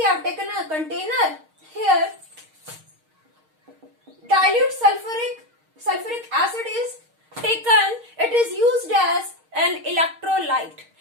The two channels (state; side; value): late; left; 6.4 ms